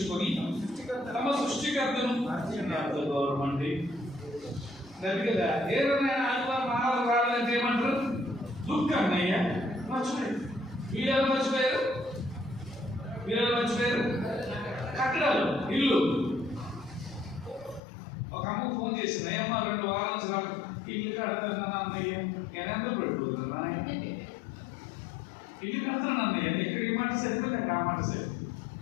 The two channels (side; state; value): right; drops out; at 17.8 s